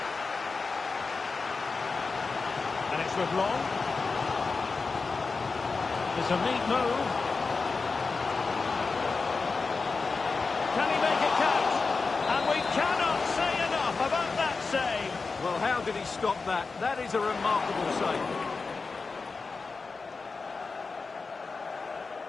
And it's with Long. It's a neat move. Can he make it count? And we cannot say enough about that save. Well, how did he stop that? That is a remarkable save.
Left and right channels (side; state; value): right; quieter; 4.3 dB